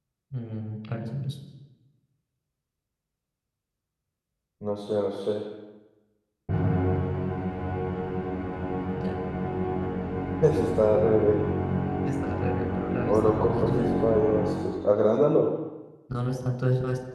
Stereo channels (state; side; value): identical; both; correlation 1.00